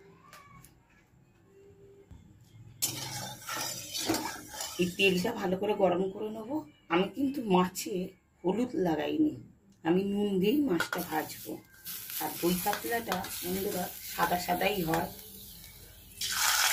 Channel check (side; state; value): both; identical; correlation 1.00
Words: এই তেলটা ভালো করে গরম করে নেবো। আমি কিন্তু মাছে হলুদ লাগাইনি, আমি নুন দিয়েই মাছটা ভাজবো। আর দই কাতলাটা বন্ধুরা সাদা সাদাই হয়।